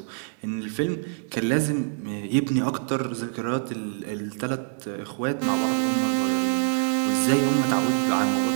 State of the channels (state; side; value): silent; left; digital silence